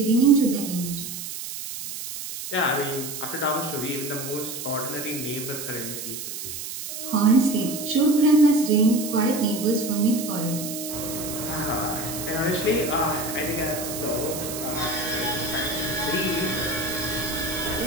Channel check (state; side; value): noise; right; hiss, 7 dB below the sound